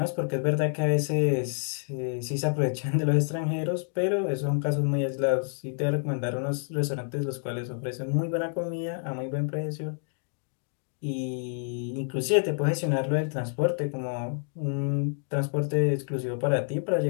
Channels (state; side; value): silent; right; digital silence